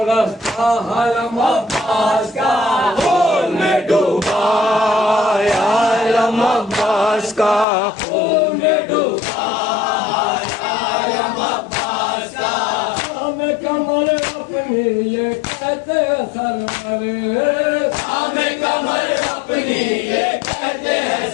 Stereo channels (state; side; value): drops out; right; at 7.7 s